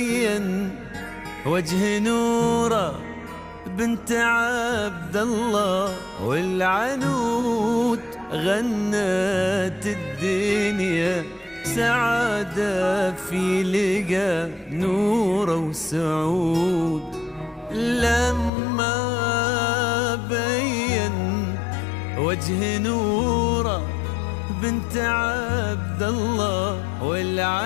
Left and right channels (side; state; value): right; drops out; at 18.5 s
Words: وجه نوره بنت عبد الله والعنود غنت الدنيا سعادة في لقى نوره وسعود. لما بين وجه نوره بنت عبد الله